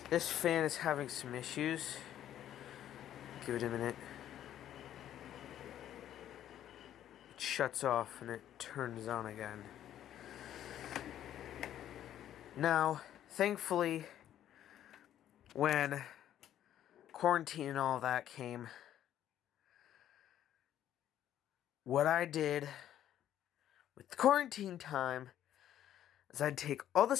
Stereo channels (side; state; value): right; quieter; 11.4 dB